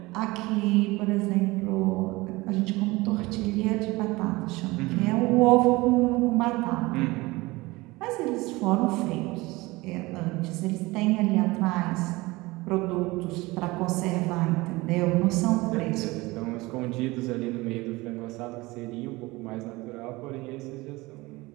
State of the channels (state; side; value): quieter; left; 21.6 dB